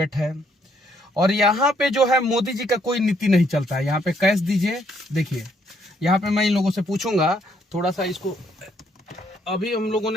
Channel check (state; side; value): normal; both; correlation 0.70